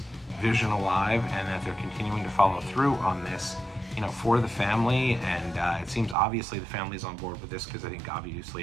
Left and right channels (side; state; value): left; drops out; at 6.2 s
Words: vision alive and that they're continuing to follow through on this, for the family. And it seems obviously the family's on board with this, because I think obviously